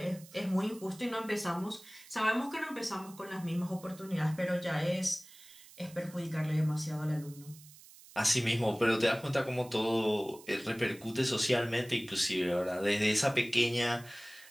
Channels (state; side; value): noise; right; hiss, 21 dB below the sound